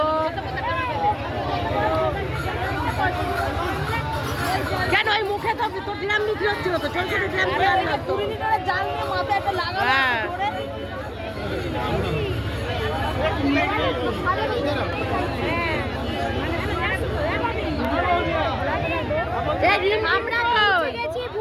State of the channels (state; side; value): identical; both; correlation 1.00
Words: কেন ওই মুখে তো ড্রাম বিক্রি হচ্ছিল, তো ছোট ছোট ড্রাম আমরা গেছি